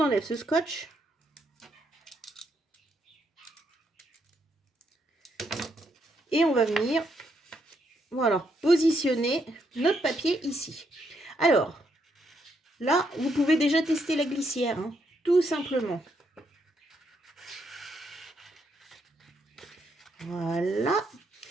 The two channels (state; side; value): normal; both; correlation 0.77